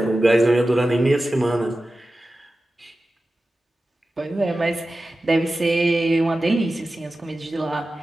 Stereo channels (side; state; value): both; normal; correlation 0.94